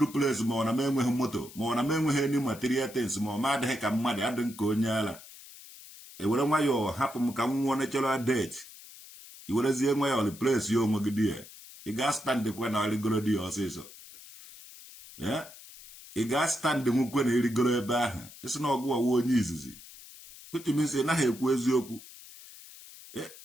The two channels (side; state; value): left; noise; hiss, 18 dB below the sound